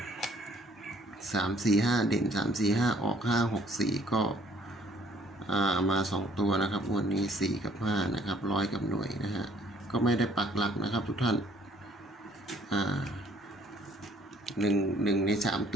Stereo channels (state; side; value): normal; both; correlation 0.61